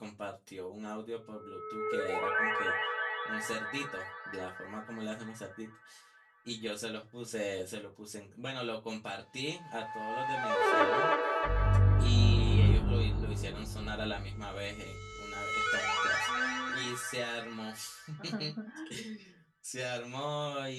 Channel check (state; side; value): identical; both; correlation 1.00